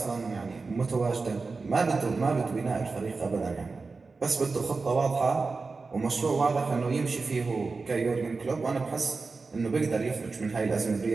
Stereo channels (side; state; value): left; quieter; 4.1 dB